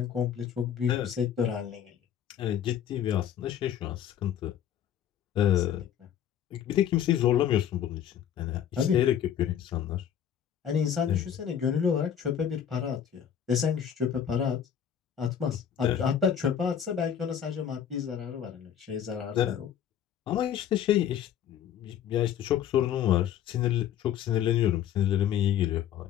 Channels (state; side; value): quieter; right; 9.4 dB